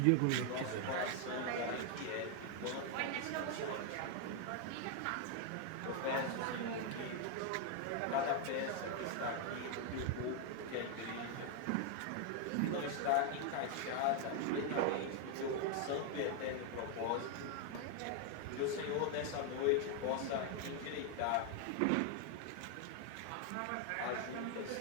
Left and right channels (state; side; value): different; both; correlation 0.00